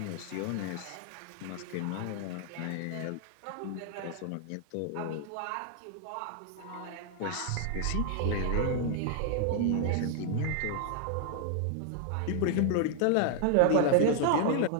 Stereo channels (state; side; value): different; both; correlation 0.00